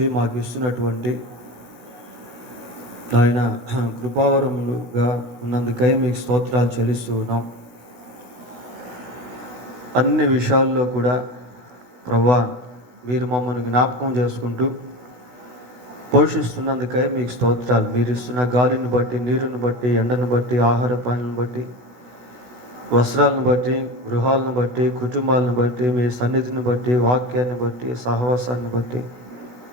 మాకు ఇస్తున్నటువంటి ఆయన కృపావరములుగా ఉన్నందుకై మీకు స్తోత్రాలు చెల్లిస్తూ ఉన్నాం. అన్ని విషయాల్లో కూడా ప్రభువా, మీరు మమ్మల్ని జ్ఞాపకం చేసుకుంటూ పోషిస్తున్నందుకై మీకు స్తోత్రాలు. మీరు ఇస్తున్న గాలిని బట్టి, నీరుని బట్టి, ఎండను బట్టి, ఆహార పానీలను బట్టి, వస్త్రాలను బట్టి, గృహాలను బట్టి, కుటుంబాలను బట్టి, మీ సన్నిధిని బట్టి, వాక్యాన్ని బట్టి, సహవాసాన్ని బట్టి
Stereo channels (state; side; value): late; left; 17 ms